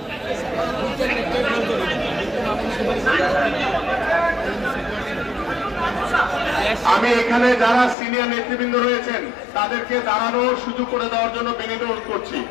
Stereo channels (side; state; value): right; drops out; at 8.0 s